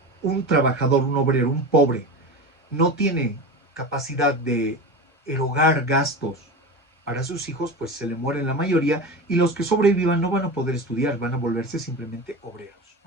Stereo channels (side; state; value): both; normal; correlation 0.27